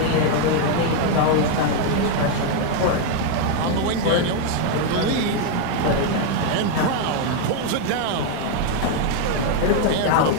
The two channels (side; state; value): both; different; correlation 0.01